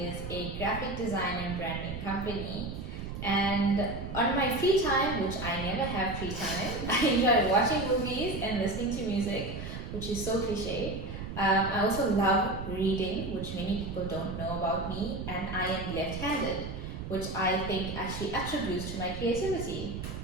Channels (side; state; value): right; noise; rumble, 7 dB below the sound